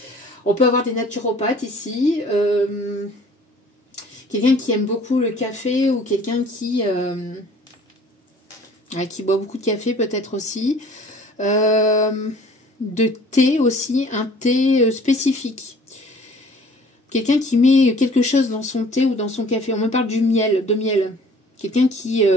On peut avoir des naturopathes ici, quelqu'un qui aime beaucoup le café, ou quelqu'un qui boit beaucoup de café peut-être aussi, de thé aussi, un thé spécifique. Quelqu'un qui met quelque chose dans son thé ou dans son café. On me parle du miel, de miel. Quelqu'un qui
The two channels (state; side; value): normal; both; correlation 0.51